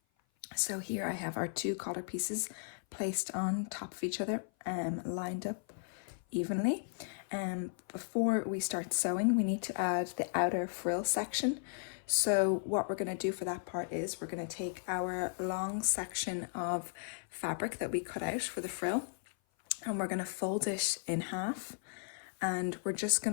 So here I have our two collar pieces placed on top of each other, lined up evenly. Before we start sewing, we need to add the outer frill section. So what we're going to do for that part is we're going to take our long section of fabric that we cut out for the frill, and we're going to fold it in half, and we're just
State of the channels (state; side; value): silent; right; 54 dB below the other